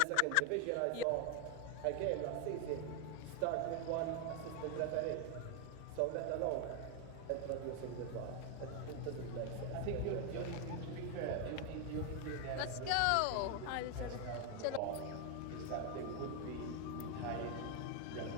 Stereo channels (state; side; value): different; both; correlation 0.01